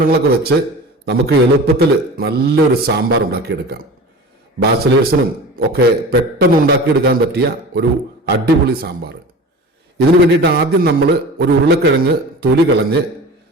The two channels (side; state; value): both; normal; correlation 0.36